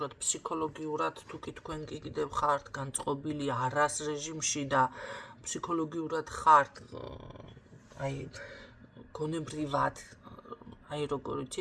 ფსიქოლოგიურად, თუ კი თქვენ კიდევ ხართ განწყობილი არას რეჟიმში და ფსიქოლოგიურად ხართ აი გონებრივად, აი როგორ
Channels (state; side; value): identical; both; correlation 1.00